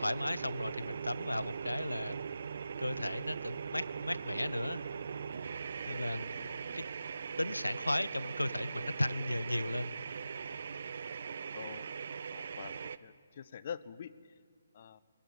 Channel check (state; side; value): inverted; both; correlation -0.92